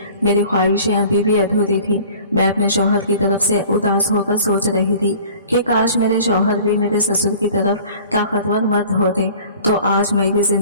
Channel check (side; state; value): both; inverted; correlation -0.47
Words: मेरी ख्वाहिशें अभी भी अधूरी थी। मैं अपने शौहर की तरफ से उदास होकर सोच रही थी कि काश मेरे शौहर भी मेरे ससुर की तरफ ताकतवर मर्द होते तो आज मैं भी